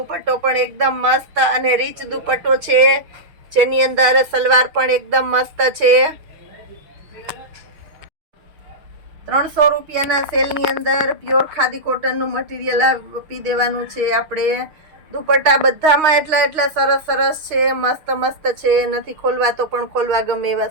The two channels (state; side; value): late; left; 6.2 ms